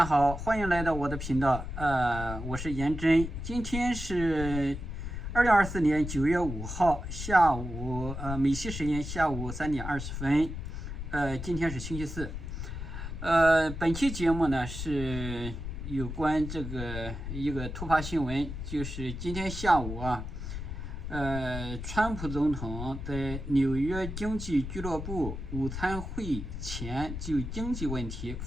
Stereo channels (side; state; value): left; noise; rumble, 7 dB below the sound